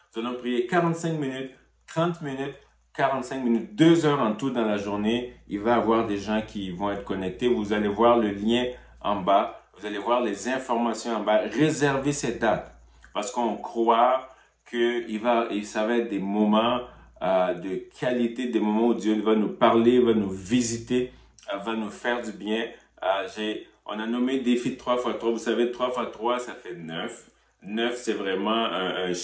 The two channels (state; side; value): identical; both; correlation 1.00